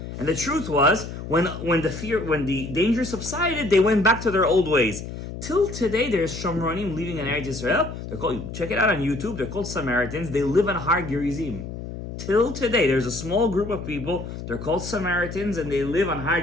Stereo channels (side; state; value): left; noise; hum, 9 dB below the sound